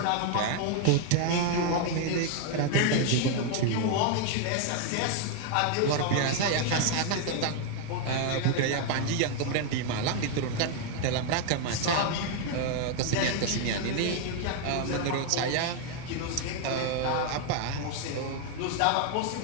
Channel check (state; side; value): different; both; correlation 0.00